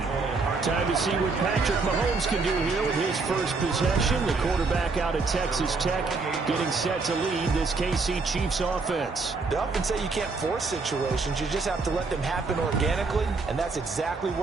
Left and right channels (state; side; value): quieter; left; 4.1 dB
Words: Time to see what Patrick Mahomes can do here with his first possession. The quarterback out of Texas Tech getting set to lead this KC Chiefs offense. They often say you can't force situations. You just have to let them happen organically, and that's exactly